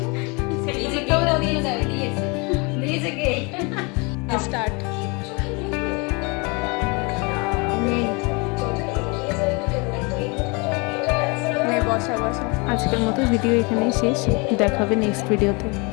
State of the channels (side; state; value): right; quieter; 29.7 dB